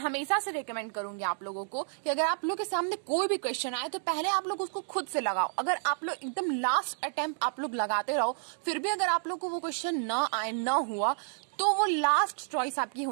से रिकमेंड करूंगी आप लोगों को कि अगर आप लोग के सामने कोई भी क्वेश्चन आए तो पहले आप लोग उसको खुद से लगाओ. अगर आप लोग एकदम लास्ट अटेम्प्ट आप लोग लगाते रहो, फिर भी अगर आप लोग को वो क्वेश्चन ना आए, ना हुआ, तो वो लास्ट चॉइस आपकी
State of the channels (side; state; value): left; silent; digital silence